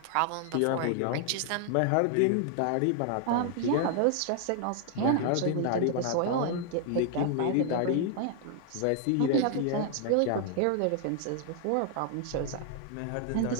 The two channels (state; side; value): different; both; correlation 0.00